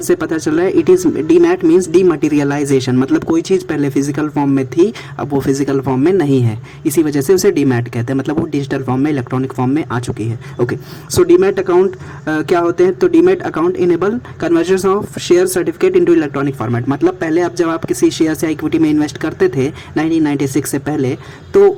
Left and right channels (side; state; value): both; identical; correlation 1.00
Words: से पता चल रहा है, it is demat means dematerialisation, मतलब कोई चीज़ पहले फिजिकल फॉर्म में थी, अब वो फिजिकल फॉर्म में नहीं है, इसी वजह से उसे डीमैट कहते हैं, मतलब वो डिजिटल फॉर्म में, इलेक्ट्रॉनिक फॉर्म में आ चुकी है। ओके, सो डीमैट अकाउंट क्या होते हैं? तो demat account enable conversion of share certificate into electronic format. मतलब पहले जब आप किसी शेयर या इक्विटी में इन्वेस्ट करते थे 1996 से पहले, तो